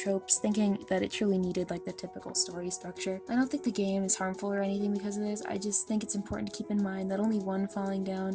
thinking that it truly needed like the typical story structure. I don't think the game is harmful or anything because of this. I just think it's important to keep in mind that only one falling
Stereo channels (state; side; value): identical; both; correlation 1.00